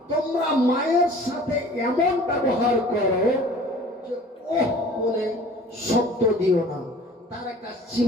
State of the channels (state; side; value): normal; both; correlation 0.47